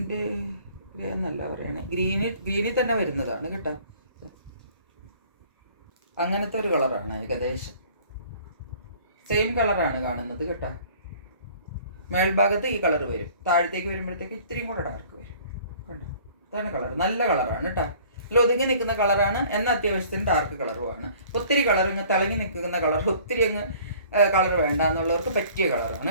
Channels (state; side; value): inverted; both; correlation -0.52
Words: എന്നല്ല പറയണേ. ഗ്രീനിൽ തന്നെ വരുന്നതാണ് കേട്ടോ. അങ്ങനത്തെ ഒരു കളറാണ്. ഏകദേശം സെയിം കളറാണ് കാണുന്നത് കേട്ടോ. മേൽഭാഗത്ത് ഈ കളർ വരും. താഴത്തേക്ക് വരുമ്പോഴത്തേക്ക് ഇത്തിരിയും കൂടെ ഡാർക്ക് വരും കണ്ടോ. ഇതാണ് കളർ. നല്ല കളറാണ് കേട്ടോ. ഒതുങ്ങി നിൽക്കുന്ന കളറാണ്. എന്നാൽ അത്യാവശ്യത്തിന് ഡാർക്ക് കളറുമാണ്. ഒത്തിരി കളർ ഇങ്ങ് തിളങ്ങി നിൽക്കുന്ന കളർ, ഒത്തിരി അങ്ങ് കളർ വേണ്ട എന്നുള്ളവർക്ക് പറ്റിയ കളറാണ്